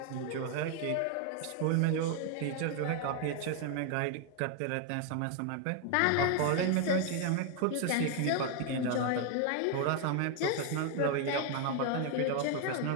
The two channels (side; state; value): both; different; correlation 0.00